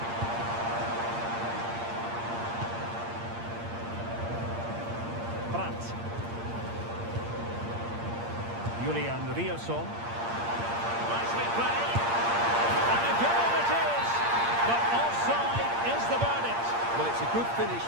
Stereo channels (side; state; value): left; late; 8.7 ms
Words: Julian Rierson. Nicely played. And a goal it is. But offside is the verdict. Well, it's a good finish,